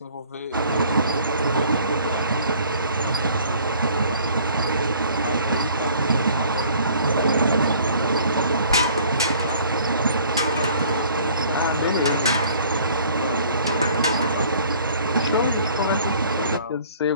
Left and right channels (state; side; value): inverted; both; correlation -0.54